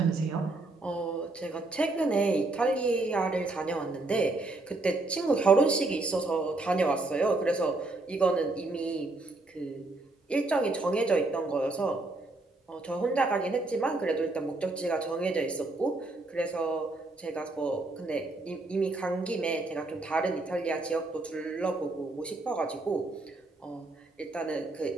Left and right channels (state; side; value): quieter; left; 3.0 dB